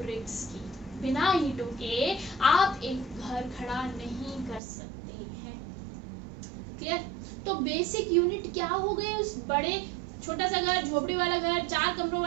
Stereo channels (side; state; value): left; drops out; at 4.6 s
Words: की। बिना ईंटों के आप एक घर खड़ा नहीं कर सकते हैं। क्लियर? तो बेसिक यूनिट क्या हो गए उस बड़े, छोटा सा घर, झोपड़ी वाला घर, 4 कमरों